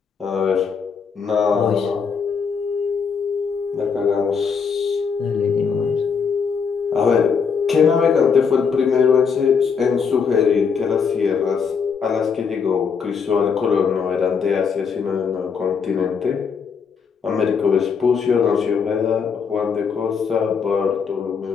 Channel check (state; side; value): quieter; right; 6.0 dB